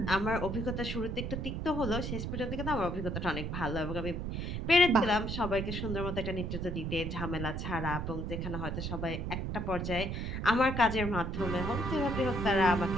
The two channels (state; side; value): noise; right; rumble, 3 dB below the sound